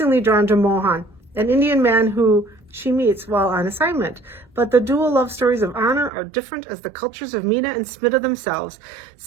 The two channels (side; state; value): left; drops out; at 6.1 s